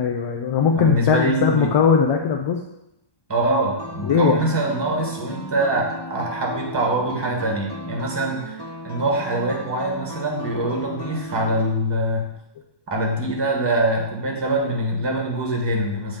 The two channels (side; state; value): right; late; 1.2 ms